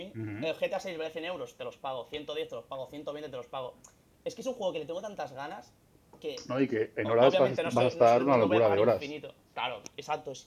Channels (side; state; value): both; identical; correlation 1.00